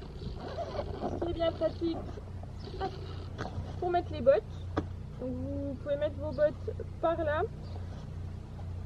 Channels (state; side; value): identical; both; correlation 1.00